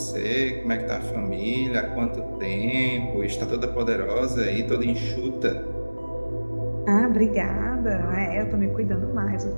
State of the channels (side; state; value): both; inverted; correlation -1.00